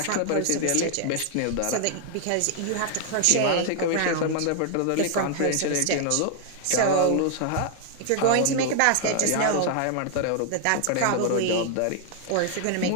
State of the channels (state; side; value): different; both; correlation 0.00